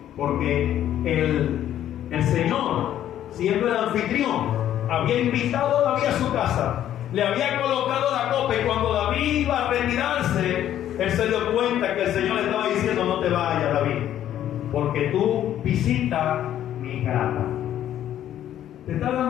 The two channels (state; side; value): quieter; right; 11.4 dB